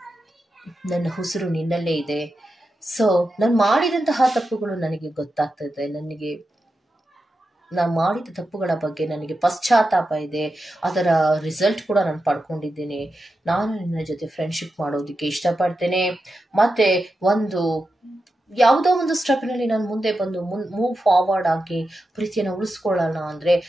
ನನ್ನ ಉಸಿರು ನಿನ್ನಲ್ಲೇ ಇದೆ. ಸೊ ನಾನು ಮಾಡಿದಂತಹ ತಪ್ಪುಗಳು ನನಗೆ ಗೊತ್ತಾಗ್ತದೆ, ನಾನು ಮಾಡಿದ ತಪ್ಪುಗಳ ಬಗ್ಗೆ ನನಗೆ ಪಶ್ಚಾತ್ತಾಪ ಇದೆ, ಅದರ ರಿಸಲ್ಟ್ ಕೂಡ ನಾನು ಪಡ್ಕೊಂಡಿದ್ದೇನೆ. ನಾನು ನಿನ್ನ ಜೊತೆ ಫ್ರೆಂಡ್ಶಿಪ್ ಮಾಡೋದಕ್ಕೆ ಇಷ್ಟಪಡ್ತೇನೆ, ಮತ್ತೆ ಯಾವುದೋ ಒಂದು ಸ್ಟೆಪ್ನಲ್ಲಿ ನಾನು ಮುಂದೆ ಬಂದು ಮೂವ್ ಫಾರ್ವರ್ಡ್ ಆಗಿ ಪ್ರೀತಿಯನ್ನು ಉಳಿಸ್ಕೊಳ್ಳೋಣ ಅಂದರೆ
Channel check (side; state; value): both; normal; correlation 0.90